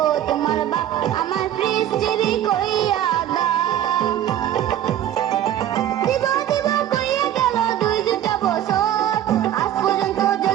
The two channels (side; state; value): left; quieter; 11.5 dB